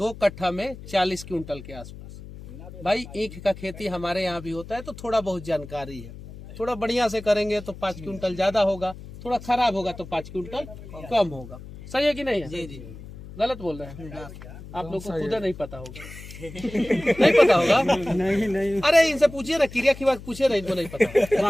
कट्ठा में 40 क्विंटल के आसपास। भाई ईख का खेती हमारे यहाँ भी होता है, तो थोड़ा बहुत जानकारी है। थोड़ा बढ़िया से करेंगे तो 5 क्विंटल ज्यादा होगा, थोड़ा खराब होगा तो 5 क्विंटल कम होगा। सही है कि नहीं है? जी। गलत बोल रहे हैं आप लोग को? खुद नहीं पता होगा। नहीं पता होगा? नहीं। अरे इनसे पूछिए ना, क्रिया की बात पूछिए ना, इनको नहीं पता।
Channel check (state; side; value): noise; left; hum, 15 dB below the sound